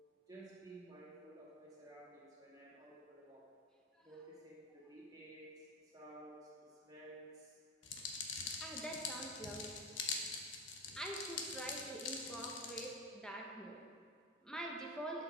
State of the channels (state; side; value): normal; both; correlation 0.19